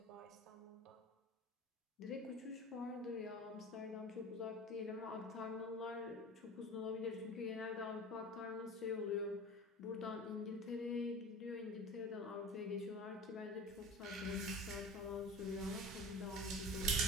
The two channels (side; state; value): both; normal; correlation 0.36